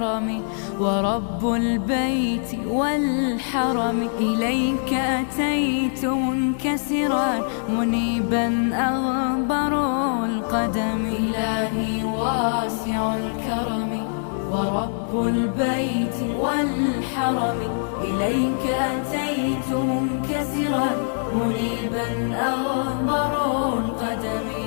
ورب البيت والحرم، إليك أتيت منكسرا منيبا أغبر القدم. إلهي واسع الكرم ورب البيت والحرم، إليك أتيت منكسرا منيبا أغبر القدم.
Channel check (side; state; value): right; silent; 58 dB below the other